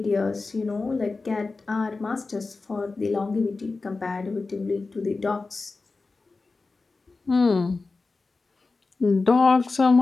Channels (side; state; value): right; quieter; 3.8 dB